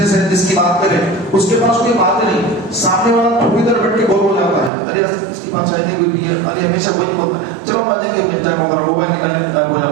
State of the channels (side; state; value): left; drops out; at 4.7 s